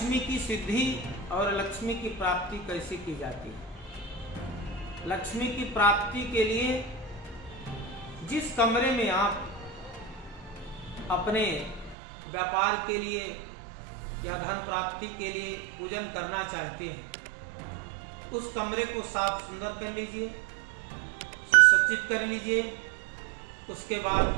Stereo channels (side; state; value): left; drops out; at 12.0 s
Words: की सिद्धि और लक्ष्मी की प्राप्ति कैसे की जाती है। लक्ष्मी की प्राप्ति के लिए जिस कमरे में आप अपने व्यापार के लिए या धन प्राप्ति के लिए पूजन करना चाहते हैं, उस कमरे को साफ सुंदर कर लीजिए, सुसज्जित कर लीजिए। उसके